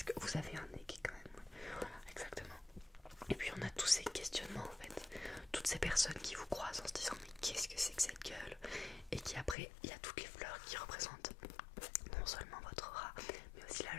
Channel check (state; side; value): drops out; right; at 9.6 s